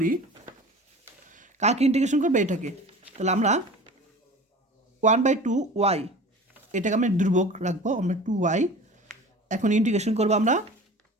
কাকে ইন্টিগ্রেশন করবে, এটাকে, তাহলে আমরা 1/2 ওয়াই এটাকে আমরা দুর্ভোগ রাখবো, আমরা 2y। এখন ইন্টিগ্রেশন করবো আমরা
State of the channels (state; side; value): normal; both; correlation 0.39